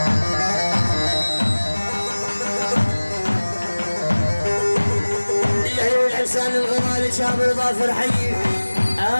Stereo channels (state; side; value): inverted; both; correlation -1.00